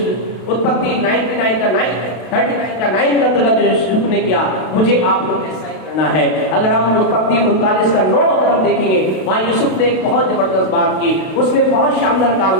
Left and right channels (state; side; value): late; right; 32 ms